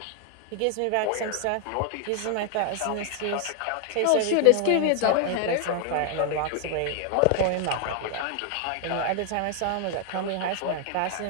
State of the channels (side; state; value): both; different; correlation 0.00